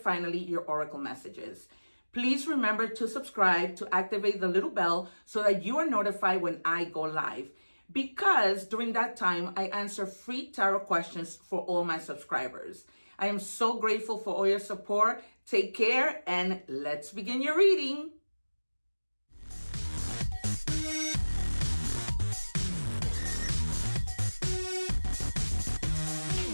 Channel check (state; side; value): inverted; both; correlation -1.00